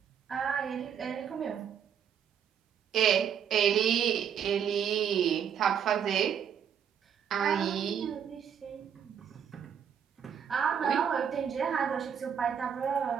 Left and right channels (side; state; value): left; quieter; 8.2 dB